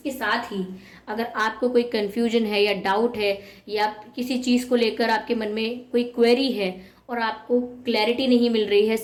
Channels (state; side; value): identical; both; correlation 1.00